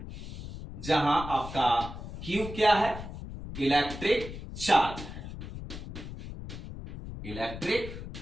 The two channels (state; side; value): noise; left; rumble, 10 dB below the sound